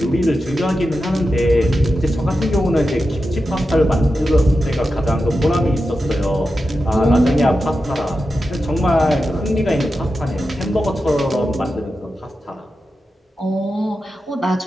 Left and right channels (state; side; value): normal; both; correlation 0.90